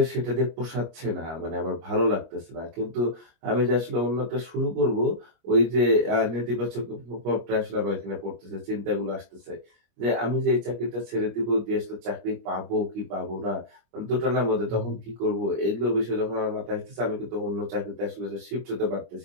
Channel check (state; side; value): late; left; 25 ms